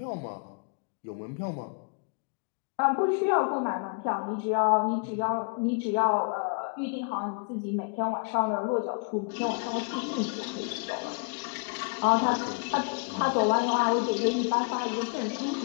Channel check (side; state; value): right; quieter; 38.6 dB